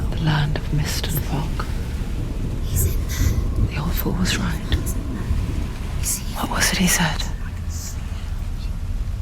of mist and fog. He's in there. The old fool was right. Is he? What was it he said?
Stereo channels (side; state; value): both; identical; correlation 1.00